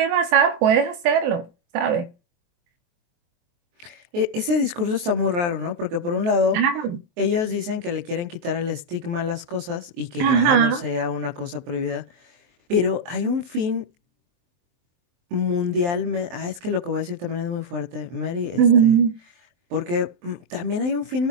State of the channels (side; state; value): left; late; 23 ms